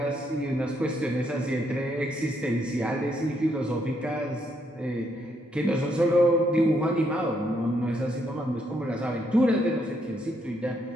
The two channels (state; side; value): normal; both; correlation 0.74